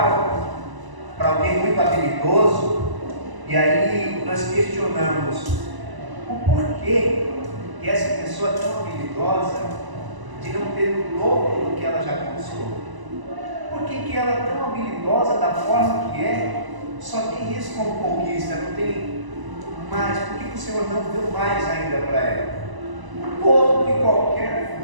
para alguém muito habilidoso, e aí nós questionamos o porquê que essa pessoa é tão habilidosa de não ter o dobro do que ela já conquistou. Por que ela é tão habilidosa da forma que é, só tem isso como conquista, não tem mais? Por que o Senhor não deu mais ainda para ela? Todo e qualquer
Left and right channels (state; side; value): late; left; 1.0 ms